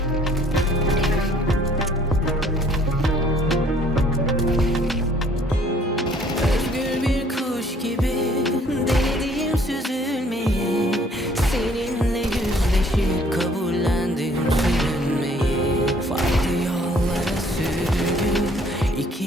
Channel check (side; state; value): both; normal; correlation 0.59